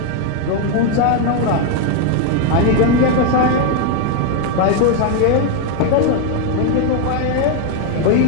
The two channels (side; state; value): both; different; correlation 0.01